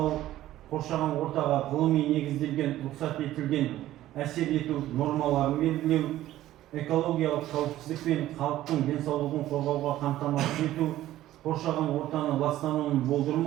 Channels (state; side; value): quieter; left; 14.2 dB